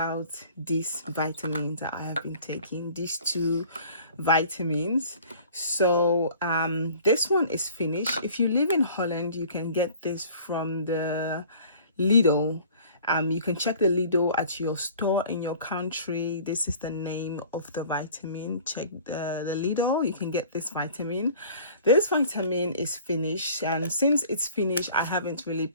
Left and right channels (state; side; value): inverted; both; correlation -0.48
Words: these vitamins that I have been taking, these two vitamins. So this one is finished. If you live in Holland, you can get this from the Lidl. You can check the Lidl at your store in your country. This is the name of the vitamin. Check the Lidl. You can get this vitamin. This vitamin is finished, and since it's finished, I haven't really